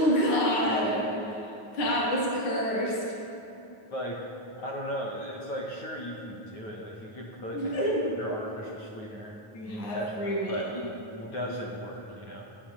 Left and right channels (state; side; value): late; right; 9.3 ms